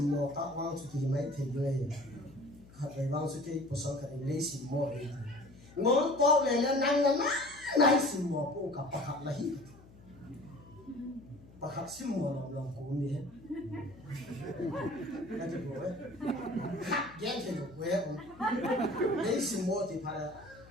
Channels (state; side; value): noise; left; hum, 22 dB below the sound